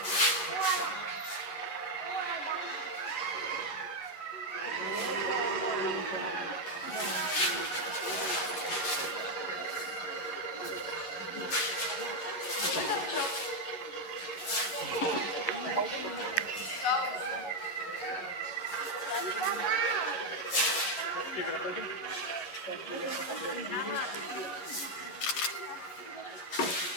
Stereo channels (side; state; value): right; late; 11 ms